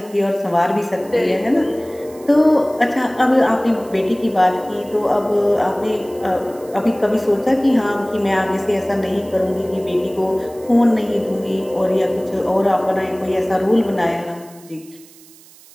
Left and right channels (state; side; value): noise; right; hiss, 24 dB below the sound